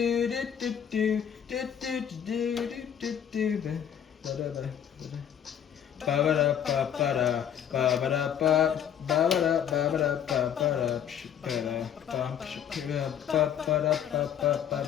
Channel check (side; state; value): right; quieter; 9.1 dB